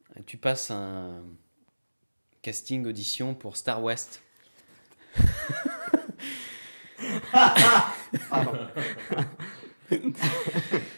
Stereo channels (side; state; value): both; inverted; correlation -1.00